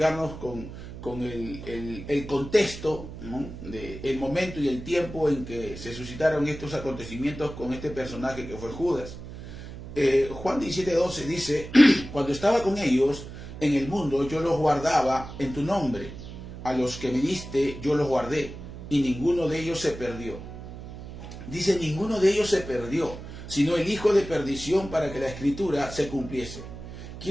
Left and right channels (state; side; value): noise; right; hum, 12 dB below the sound